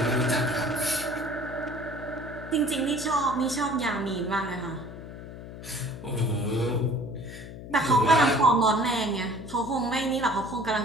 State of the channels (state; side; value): noise; left; hum, 12 dB below the sound